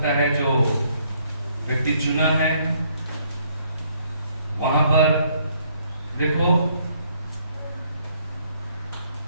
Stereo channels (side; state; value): both; inverted; correlation -0.67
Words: है जो व्यक्ति चुना है। वहां पर देखो,